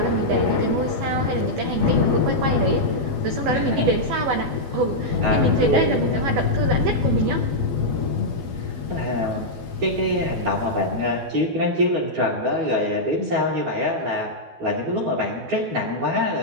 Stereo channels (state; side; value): late; left; 12 ms